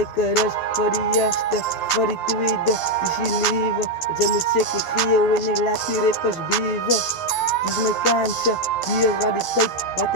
rust voor die eerste, voor die tweede. Die is je leven. Zij moet zeker geel en ik laat die rippers bieven. Dit is mijn kansje, hier is wat die tijd, wat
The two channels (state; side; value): late; right; 11 ms